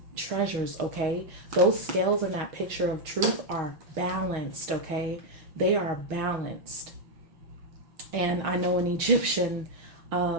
treasures, okay? Those scales in that picture of truth are balanced, okay? They are balanced. And I know in Egyptian,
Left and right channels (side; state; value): left; late; 6.4 ms